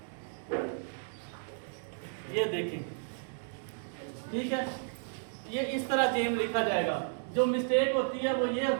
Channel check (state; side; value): silent; left; digital silence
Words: ये देखिए, ठीक है, ये इस तरह जेम लिखा जाएगा। जो मिस्टेक होती है वो ये